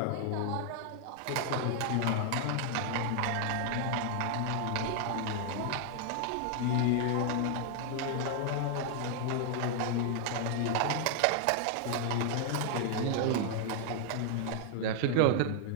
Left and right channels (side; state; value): both; different; correlation 0.00